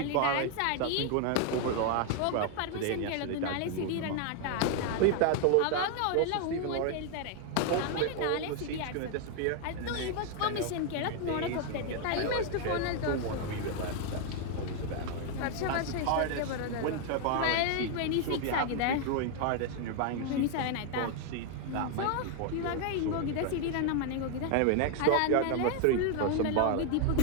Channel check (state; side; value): different; both; correlation 0.00